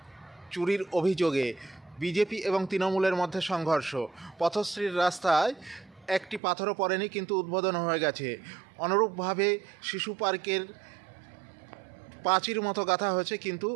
চুরির অভিযোগে বিজেপি এবং তৃণমূলের মধ্যে সংঘর্ষ। পথশ্রীর রাস্তায় একটি পাথরও পড়েনি, কিন্তু উদ্বোধন হয়ে গেছে। অনুরূপভাবে শিশু পার্কের পাঁচির মতো গাঁথা হয়েছে, কিন্তু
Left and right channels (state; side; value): drops out; left; at 6.4 s